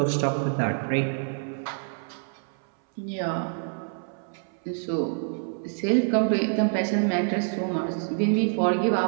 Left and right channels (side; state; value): left; silent; 59 dB below the other